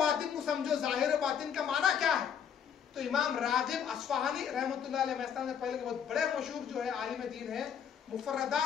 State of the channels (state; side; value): quieter; right; 8.0 dB